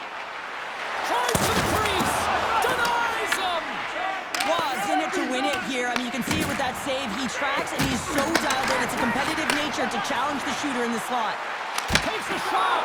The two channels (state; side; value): identical; both; correlation 1.00